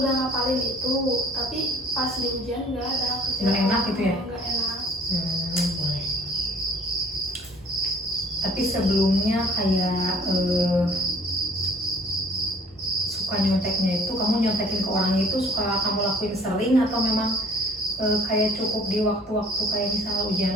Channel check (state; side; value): normal; both; correlation 0.53